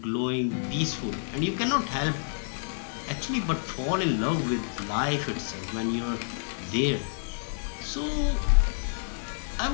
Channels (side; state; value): right; silent; digital silence